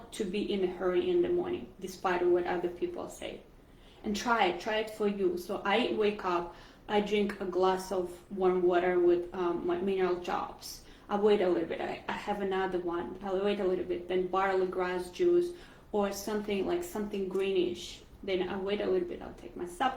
to be in a hurry in the morning, despite what other people say. And try it for you. So I wake up, I drink a glass of warm water with my mineral drops. I wait a little bit, I have another one, I'll wait a little bit, then barley grass juice or something like something greenish. Then I wait a little bit, I'll take my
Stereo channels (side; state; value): both; identical; correlation 1.00